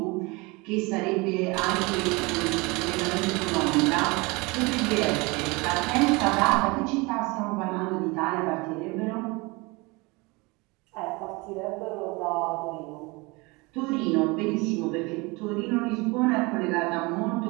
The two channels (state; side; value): quieter; left; 25.8 dB